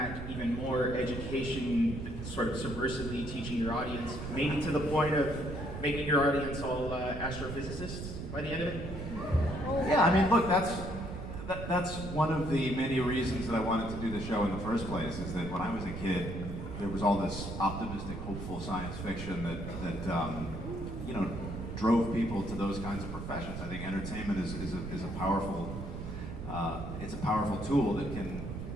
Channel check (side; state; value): right; noise; rumble, 7 dB below the sound